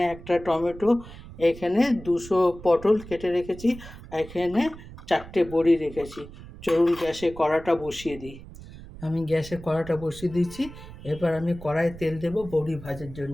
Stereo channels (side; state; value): right; noise; rumble, 16 dB below the sound